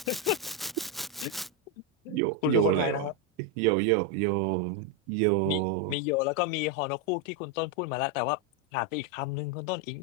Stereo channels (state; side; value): normal; both; correlation 0.04